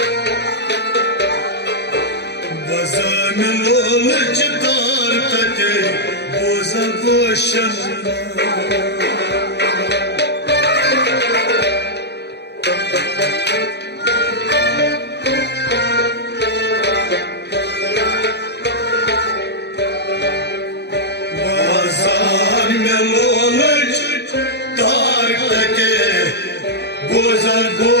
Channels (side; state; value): right; late; 0.49 ms